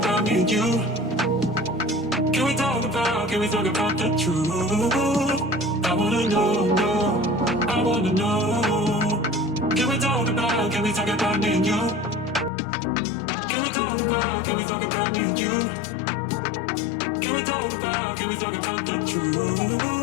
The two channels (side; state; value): right; drops out; at 12.5 s